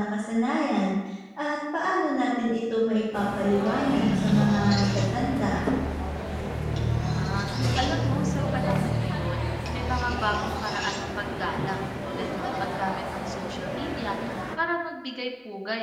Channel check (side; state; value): both; identical; correlation 1.00